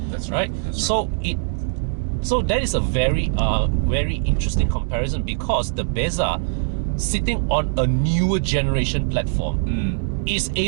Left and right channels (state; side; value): silent; left; digital silence